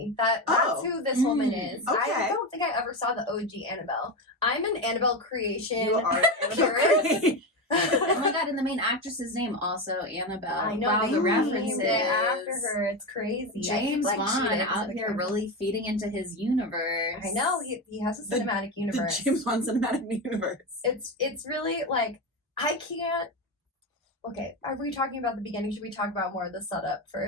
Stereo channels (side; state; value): both; normal; correlation 0.16